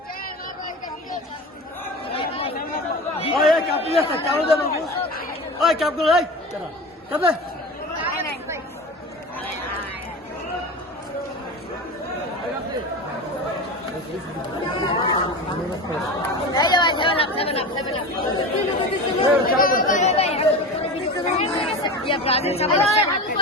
ওই কাপ দিয়ে কাপ দে বাবু, ওই কাপ গুলো এই কাপ দে। এই যে ভাই, 7 আপ 7 আপ 7 আপ। ইয়া ব্রাজিল সামনে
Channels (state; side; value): normal; both; correlation 0.29